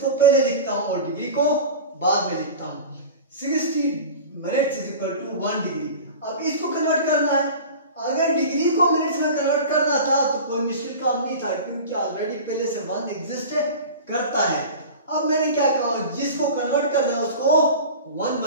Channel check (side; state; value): both; inverted; correlation -0.34